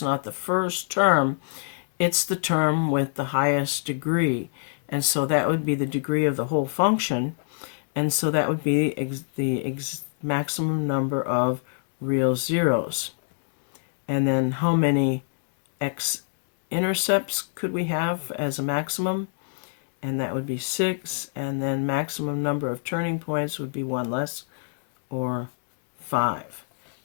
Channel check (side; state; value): right; silent; digital silence